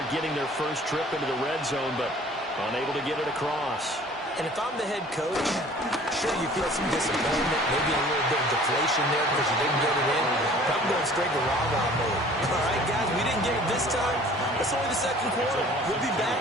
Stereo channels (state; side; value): normal; both; correlation 0.50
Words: getting their first trip into the red zone, but unable to get it across. And if I'm the head coach, sure you feel some disappointment, maybe a little bit of deflation there because you didn't get it in. But I'm going straight to rah-rah mode. All right, guys, we didn't get it this time. It's only the 2nd quarter. We'll be back.